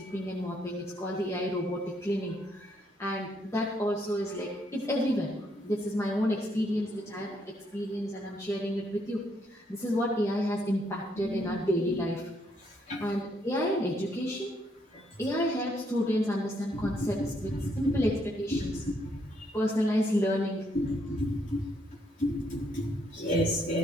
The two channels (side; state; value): both; normal; correlation 0.73